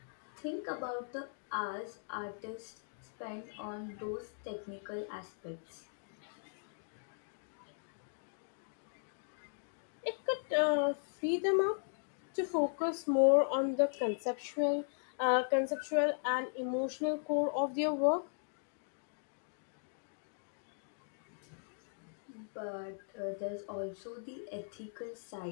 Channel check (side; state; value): right; silent; digital silence